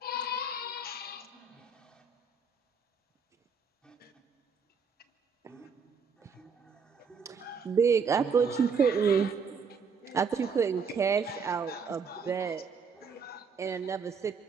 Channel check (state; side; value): quieter; left; 5.4 dB